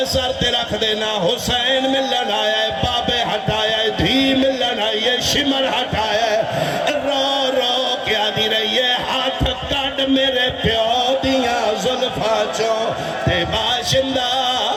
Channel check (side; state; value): both; identical; correlation 1.00